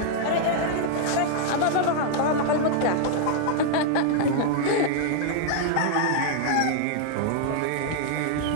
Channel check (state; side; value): different; both; correlation 0.00